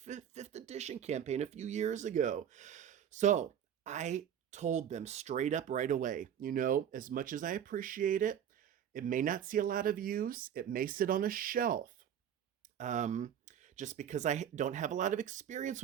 edition campaign a few years ago. So I told them straight up right away, you know, as much as I appreciate it, it may not see a lot of use. It may sit on a shelf. Um, just because I don't have a lot of experience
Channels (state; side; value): quieter; left; 9.3 dB